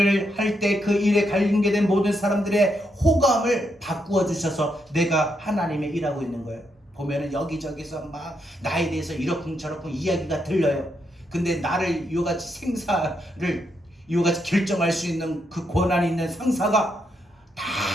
할 때 그 일에 관련된 모든 사람들의 호감을 바꾸어 주셔서 내가 하나님의 일하고 있는 거예요. 보면은 여기저기서 막 나에 대해서 이러쿵저러쿵 이야기가 들려요. 근데 나를 이같이 생사를 이같이 결정할 수 있는 그 권한이 있는 상사가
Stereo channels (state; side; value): normal; both; correlation 0.80